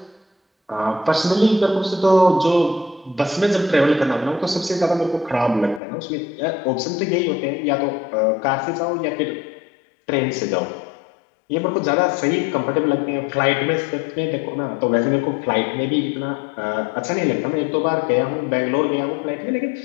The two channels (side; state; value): right; drops out; at 5.8 s